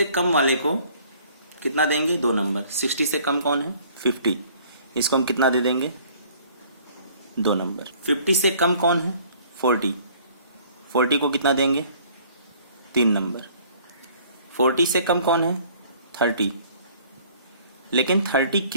कम वाले को कितना देंगे, 2 नंबर। 60 से कम कौन है, 50, इसको हम कितना दे देंगे, 2 नंबर। 50 से कम कौन है, 40, 40 को कितना देंगे, 3 नंबर। 40 से कम कौन है, 30, लेकिन 30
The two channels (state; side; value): inverted; both; correlation -0.56